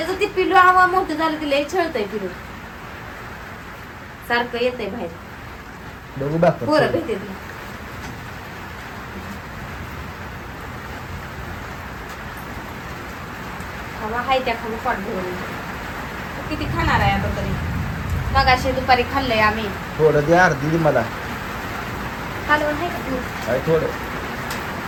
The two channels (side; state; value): both; identical; correlation 1.00